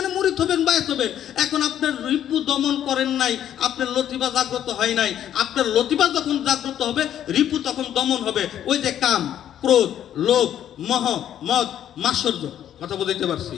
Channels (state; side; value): quieter; right; 10.7 dB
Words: মুরিদ হবেন, বায়াত হবেন। এখন আপনার রিপু দমন করেন নাই, আপনার লতিফা জাগ্রত হয় নাই। আপনার লতিফা যখন জাগ্রত হবে রিপু তখন দমন হবে। ওই যে কাম, ক্রোধ, লোভ, মোহ, মদ, মাৎসর্য। কথা বলতে পারছি?